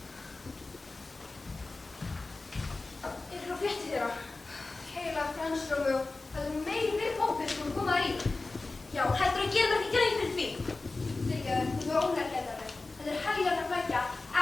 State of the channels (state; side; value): quieter; right; 3.4 dB